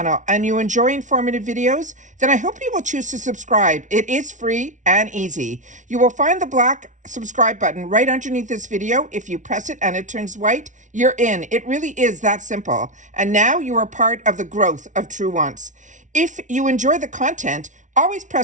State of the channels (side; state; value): left; late; 0.37 ms